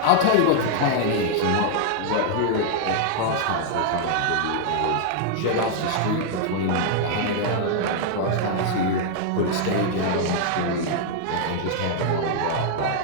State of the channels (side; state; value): both; different; correlation 0.00